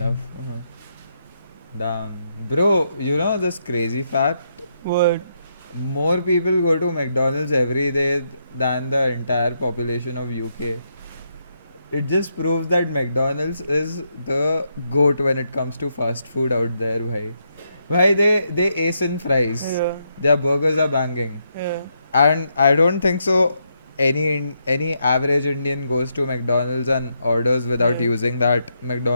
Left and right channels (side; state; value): both; inverted; correlation -0.80